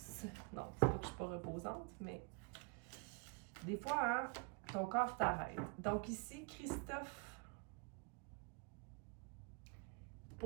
Non, c'est pas que je suis pas reposante, mais des fois, hein, ton corps t'arrête. Donc ici, Christophe.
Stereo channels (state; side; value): quieter; left; 32.6 dB